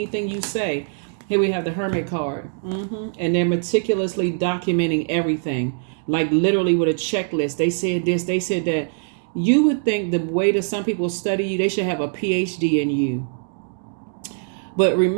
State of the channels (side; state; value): left; silent; digital silence